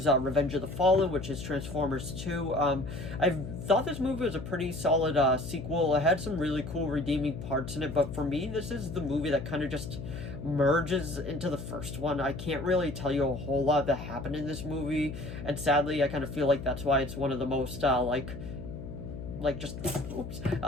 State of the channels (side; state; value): left; noise; hum, 9 dB below the sound